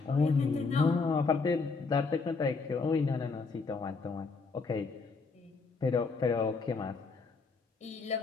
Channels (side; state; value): right; quieter; 4.4 dB